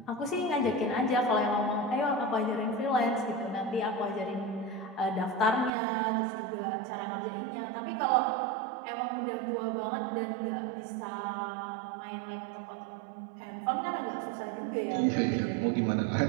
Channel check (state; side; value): drops out; left; at 5.7 s